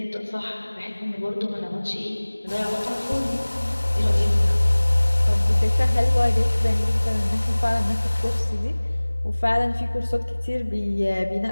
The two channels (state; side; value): inverted; both; correlation -1.00